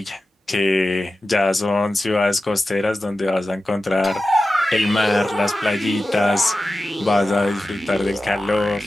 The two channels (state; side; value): normal; both; correlation 0.93